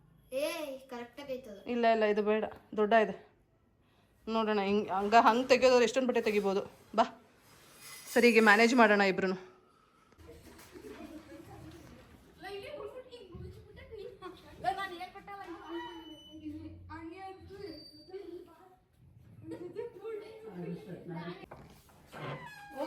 ಇಲ್ಲ ಇಲ್ಲ ಇದು ಬೇಡ, ದೊಡ್ಡ ಇದೆ. ನೋಡೋಣ ಹಂಗೆ ತೆಗೆಯೋದ್ರೆ ಎಷ್ಟೊಂದು ಬಟ್ಟೆ ತೆಗಿಬೋದು. ಬಾ ಸರಿಗೆ ಮ್ಯಾನೇಜ್ ಮಾಡೋಣ ಇಬ್ರು.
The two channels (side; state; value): both; identical; correlation 1.00